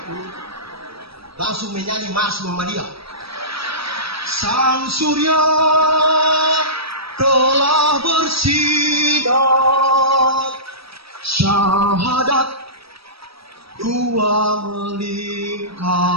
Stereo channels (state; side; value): late; left; 0.76 ms